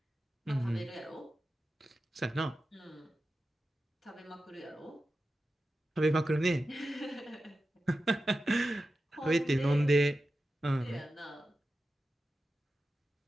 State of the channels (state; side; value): normal; both; correlation 0.92